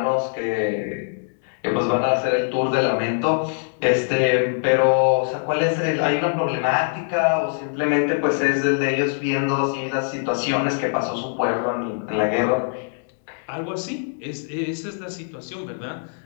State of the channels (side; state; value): right; silent; digital silence